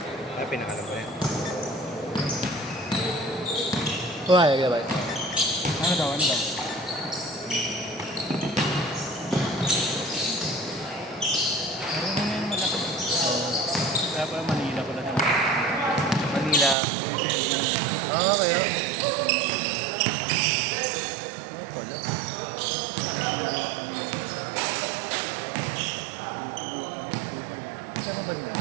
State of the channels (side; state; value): left; drops out; at 16.8 s